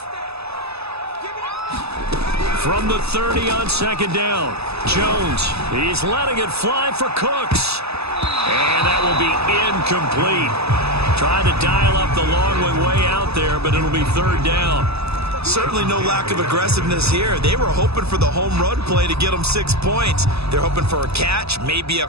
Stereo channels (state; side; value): late; left; 0.79 ms